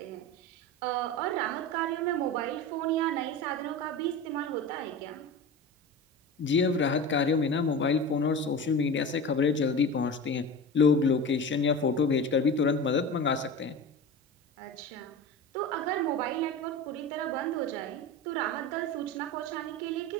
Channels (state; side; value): normal; both; correlation 0.29